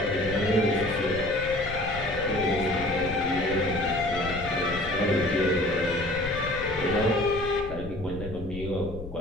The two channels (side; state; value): left; noise; rumble, 11 dB below the sound